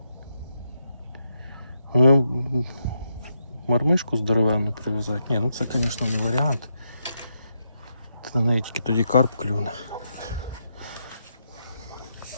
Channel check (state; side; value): inverted; both; correlation -0.82